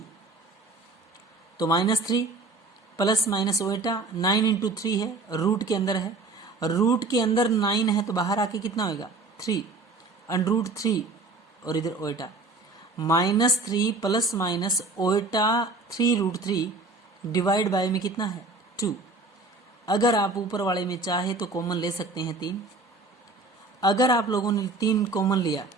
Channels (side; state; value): left; quieter; 3.5 dB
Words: तो -3 प्लस माइनस ओएटा 9 इंटू 3 है, रूट के अंदर है, रूट के अंदर 9 है तो बाहर आके कितना होगा 3, अंडर रूट 3 और इधर ओएटा, -3 प्लस माइनस ओएटा 3√3 डिवाइड बाय में कितना है 2। अगर आप ऊपर वाले में चाहे तो कॉमन ले सकते हैं 3, अगर आप लोगों ने 3 कॉमन लिया,